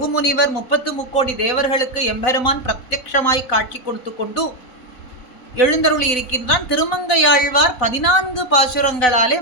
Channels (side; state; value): right; late; 4.0 ms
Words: முனிவர் 33 தேவர்களுக்கு எம்பெருமான் பிரத்யக்ஷமாய் காட்சி கொடுத்து கொண்டு எழுந்தருளி இருக்கின்றான். திருமங்கையாழ்வார் 14 பாசுரங்களாலே